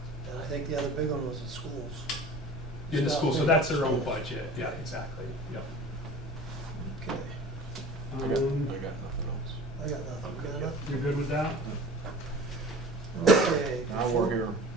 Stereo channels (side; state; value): both; normal; correlation 0.41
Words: And I think the other big one was the schools. In the Stop school, so paying that's for their own schools. budget. Yeah, exactly. Yep. Okay, I got nothing else. I got nothing. Got enough? You're good with that? Okay. Now we're here.